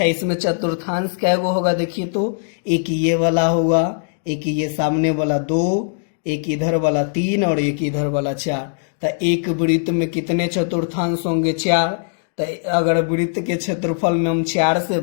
इसमें चतुर्थांश क्या वो होगा, देखिए तो एक ये वाला होगा, एक ये सामने वाला 2, एक इधर वाला 3 और एक इधर वाला 4। तो एक वृत्त में कितने चतुर्थांश होंगे, 4। तो अगर वृत्त के क्षेत्रफल में हम 4 से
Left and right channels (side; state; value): right; silent; digital silence